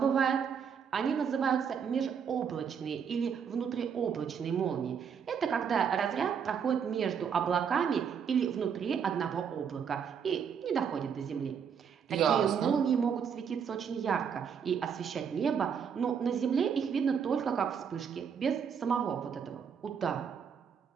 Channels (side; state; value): left; quieter; 7.2 dB